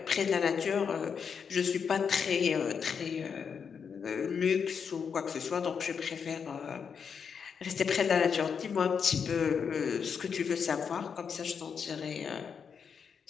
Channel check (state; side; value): quieter; right; 6.6 dB